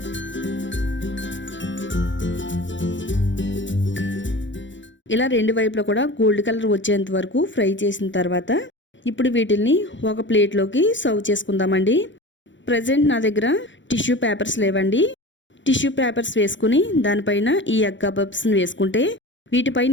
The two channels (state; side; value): late; right; 0.54 ms